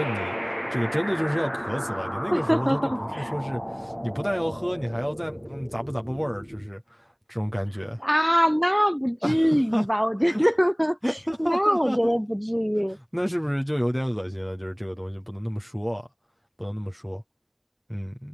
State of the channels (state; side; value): identical; both; correlation 1.00